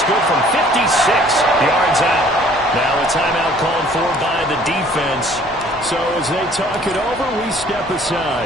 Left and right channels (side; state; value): both; normal; correlation 0.56